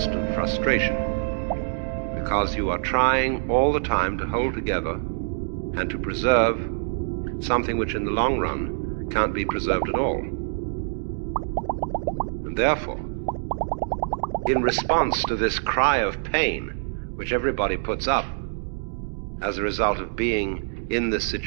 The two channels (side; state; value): left; silent; digital silence